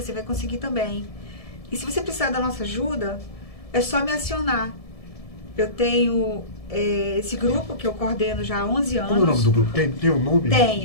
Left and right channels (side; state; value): right; late; 1.7 ms